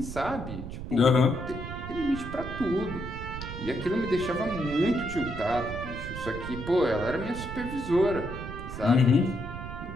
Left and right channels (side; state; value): right; noise; rumble, 8 dB below the sound